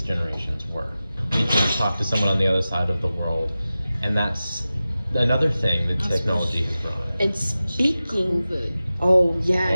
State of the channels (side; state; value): both; inverted; correlation -0.95